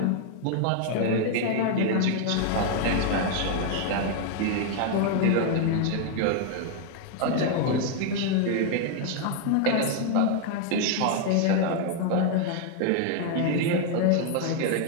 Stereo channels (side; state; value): both; different; correlation 0.00